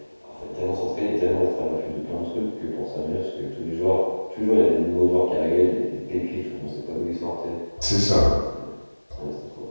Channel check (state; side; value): inverted; both; correlation -1.00